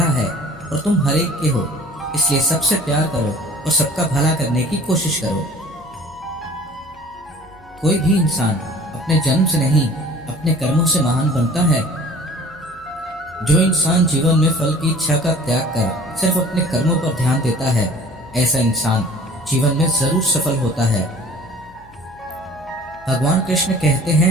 है और तुम हर एक के हो। इसलिए सबसे प्यार करो और सबका भला करने की कोशिश करो। कोई भी इंसान अपने जन्म से नहीं, अपने कर्मों से महान बनता है। जो इंसान जीवन में फल की इच्छा का त्याग कर सिर्फ अपने कर्मों पर ध्यान देता है, ऐसा इंसान जीवन में जरूर सफल होता है। भगवान कृष्ण कहते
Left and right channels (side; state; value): left; noise; hum, 26 dB below the sound